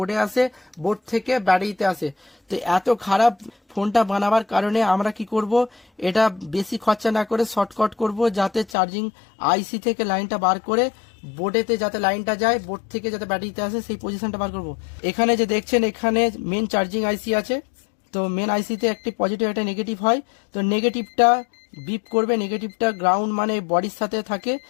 আসে, বোর্ড থেকে ব্যাটারিতে আসে। তো এত খারাপ ফোনটা বানাবার কারণে আমরা কি করব, এটা বেশি খরচা না করে শর্টকাট করব, যাতে চার্জিং আইসি থেকে লাইনটা বার করে বোর্ডেতে যাতে লাইনটা যায়, বোর্ড থেকে যাতে ব্যাটারিতে আসে, সেই পজিশনটা বার করব। এখানে যে দেখছেন, এখানে মেন চার্জিং আইসি আছে। তো মেন আইসিতে একটি পজিটিভ একটা নেগেটিভ হয়। তো নেগেটিভটা বিপ করবে, নেগেটিভটা গ্রাউন্ড মানে বডির সাথে থাকে,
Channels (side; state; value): right; drops out; at 8.8 s